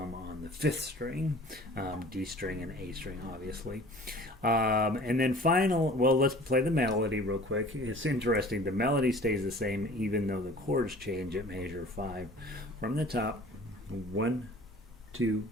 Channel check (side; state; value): both; normal; correlation 0.47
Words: on the 5th string, D string and A string, obviously. And then let's play the melody real quick. It's interesting. The melody stays the same even though the chords change at measure 5. From the top, 1, 2,